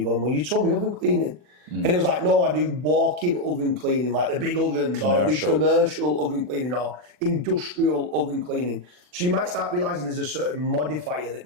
going, well, you told me oven cleaning. And it was like, no, I do walk-in oven cleaning, like the big ovens, or I do commercial oven cleaning, or industrial oven cleaning. So you might start realising there's a certain modifier that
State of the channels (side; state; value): left; late; 40 ms